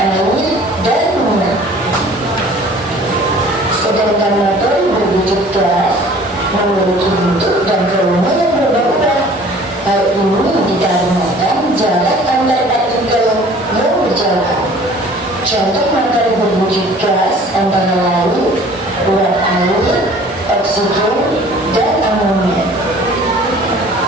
air, dan minyak. Sedangkan materi berwujud gas memiliki bentuk dan volume yang berubah-ubah. Hal ini dikarenakan jarak antar partikel yang berjauhan. Contoh materi berwujud gas antara lain uap air, oksigen, dan amonia.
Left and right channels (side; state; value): both; normal; correlation 0.50